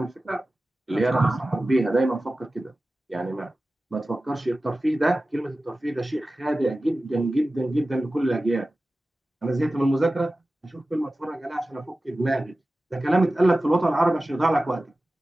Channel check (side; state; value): both; normal; correlation 0.95